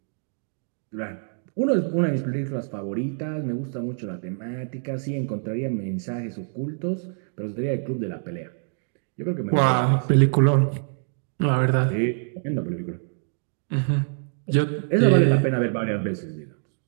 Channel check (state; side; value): silent; left; 62 dB below the other